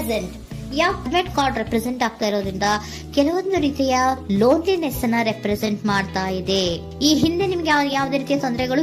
red card represent ಆಗ್ತಾ ಇರೋದ್ರಿಂದ ಕೆಲವೊಂದು ರೀತಿಯ ಲೋನ್ಲಿನೆಸ್ ಅನ್ನ ರೆಪ್ರೆಸೆಂಟ್ ಮಾಡ್ತಾ ಇದೆ. ಈ ಹಿಂದೆ ನಿಮ್ಗೆ ಯಾವುದೇ ರೀತಿಯ ತೊಂದರೆಗಳು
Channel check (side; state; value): both; identical; correlation 1.00